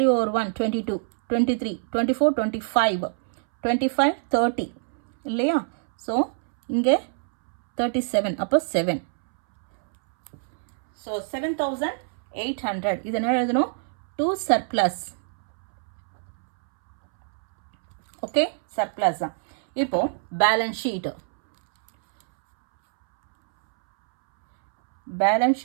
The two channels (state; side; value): silent; left; 62 dB below the other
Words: over 1 22 23 24 25 25 30 இல்லையா. ஸோ இங்கே 37, அப்போ 7. ஸோ 7800. இது என்ன எழுதணும், 2 சர்ப்ளஸ். ஓகே, சர்ப்ளஸ் தான். இப்போ balance sheet, balance